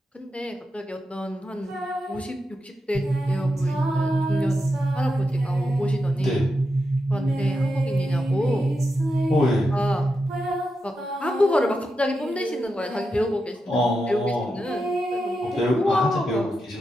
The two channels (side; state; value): both; normal; correlation 0.87